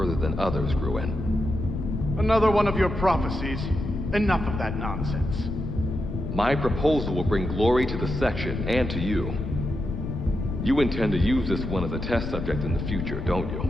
than others, Gruen. Another one of your prophecies. Enough of that nonsense. My proposal will bring glory to the section and to you. You intend to use this one as a test subject in the future, don't you?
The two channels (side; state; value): left; noise; rumble, 4 dB below the sound